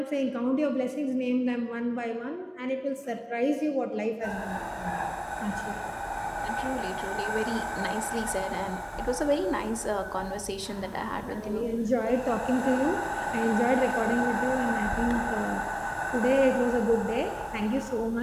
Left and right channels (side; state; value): both; identical; correlation 1.00